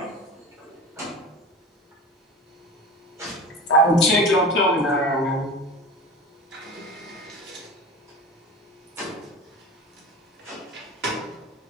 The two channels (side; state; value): both; normal; correlation 0.32